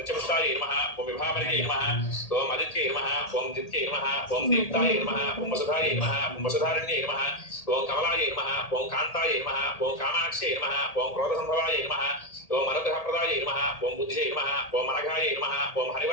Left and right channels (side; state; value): right; late; 1.8 ms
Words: నిత్యపుష్టాయై నమః ఓం విభావరియై నమః ఓం ఆదిత్యై నమః ఓం దిత్యై నమః ఓం దీప్తాయై నమః ఓం వసుధాయై నమః ఓం వసుధారణ్యై నమః ఓం కమలాయై నమః ఓం కాంతాయై నమః ఓం కామాక్షై నమః ఓం క్రోధసంభవాయై నమః ఓం అనుగ్రహప్రదాయై నమః ఓం బుద్ధియై నమః ఓం అనఘాయై నమః ఓం